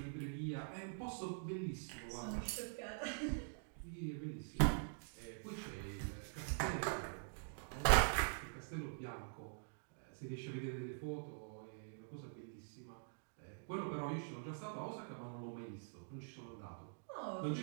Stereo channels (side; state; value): left; silent; digital silence